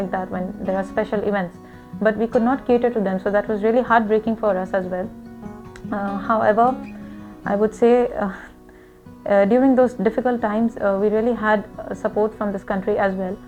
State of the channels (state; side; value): identical; both; correlation 1.00